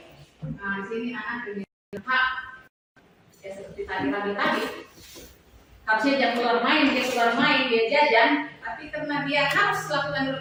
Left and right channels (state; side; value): identical; both; correlation 1.00